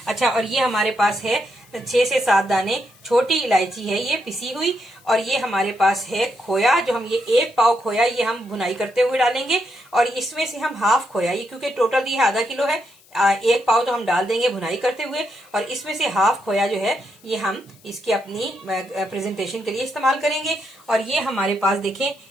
अच्छा, और ये हमारे पास है 6 से 7 दाने छोटी इलायची है ये पिसी हुई, और ये हमारे पास है खोया, जो हम ये 1 पाव खोया ये हम भुनाई करते हुए डालेंगे, और इसमें से हम हाफ खोया, ये क्योंकि टोटल ये आधा किलो है, 1 पाव तो हम डाल देंगे भुनाई करते हुए, और इसमें से हाफ खोया जो है ये हम इसकी अपनी प्रेजेंटेशन के लिए इस्तेमाल करेंगे। और ये हमारे पास देखें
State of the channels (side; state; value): left; noise; hiss, 28 dB below the sound